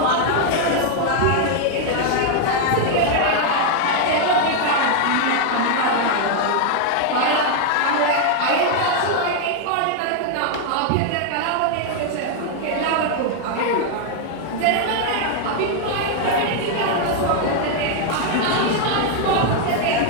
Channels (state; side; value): different; both; correlation 0.00